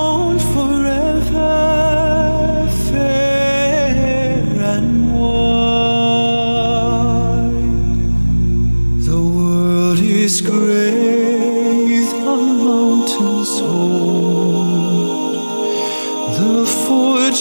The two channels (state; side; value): inverted; both; correlation -1.00